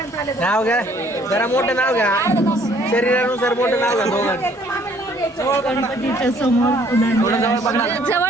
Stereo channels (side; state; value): both; normal; correlation 0.61